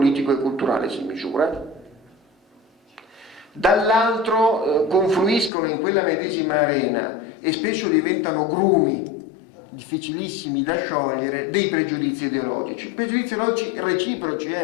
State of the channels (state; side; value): drops out; right; at 5.5 s